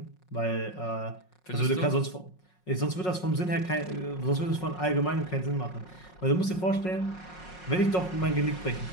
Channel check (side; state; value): right; late; 5.5 ms